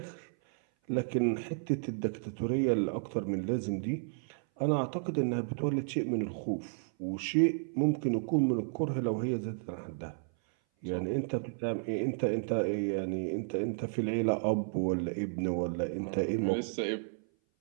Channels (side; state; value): left; silent; 56 dB below the other